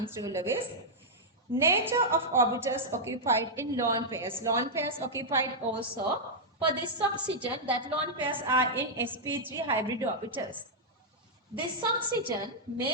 through Lewis. Nature of orbitals occupied in lone pairs. Lone pairs occupied also. For this oxygen, that lone pairs are in sp3 hybrid orbitals. This oxygen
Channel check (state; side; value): normal; both; correlation -0.06